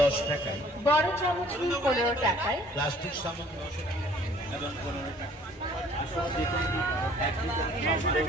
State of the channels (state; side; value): normal; both; correlation 0.55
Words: টাকায়। বড় চামচ নিন 15 টাকায়। প্লাস্টিক সামগ্রী এবং 15 টাকা। আসলে দেখুন এক লিটার